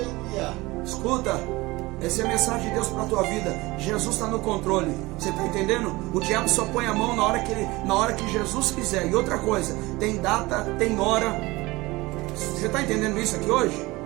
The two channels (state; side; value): quieter; left; 21.6 dB